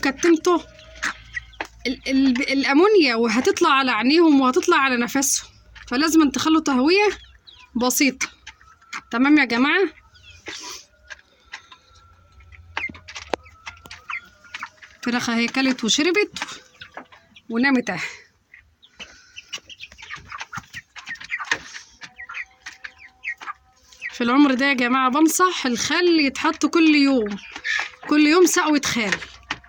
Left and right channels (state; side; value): identical; both; correlation 1.00